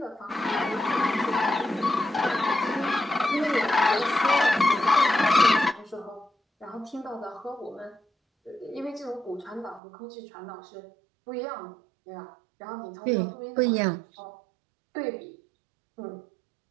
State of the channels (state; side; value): drops out; left; at 9.8 s